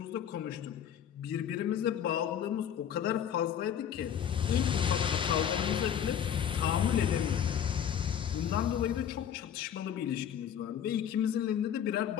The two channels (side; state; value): right; quieter; 9.1 dB